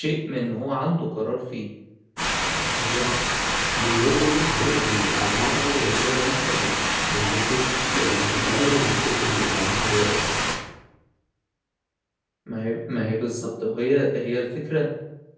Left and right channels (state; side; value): identical; both; correlation 1.00